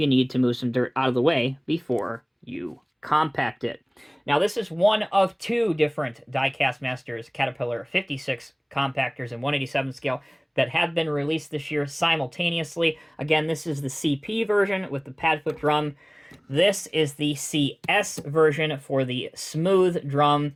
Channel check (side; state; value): both; identical; correlation 1.00